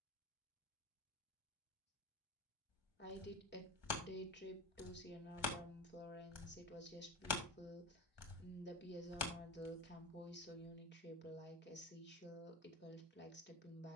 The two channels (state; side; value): normal; both; correlation 0.24